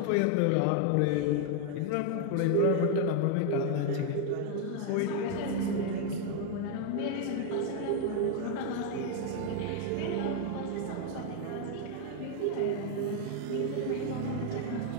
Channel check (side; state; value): both; different; correlation 0.00